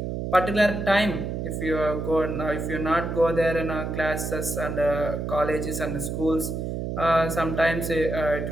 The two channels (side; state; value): right; noise; hum, 4 dB below the sound